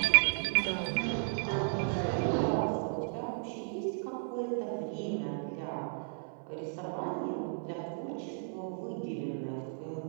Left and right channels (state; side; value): silent; left; 55 dB below the other